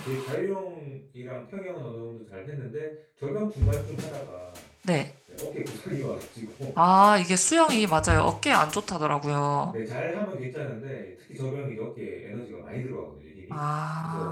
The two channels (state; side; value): identical; both; correlation 1.00